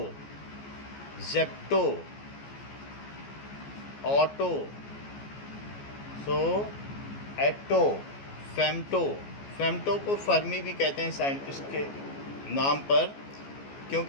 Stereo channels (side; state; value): right; late; 14 ms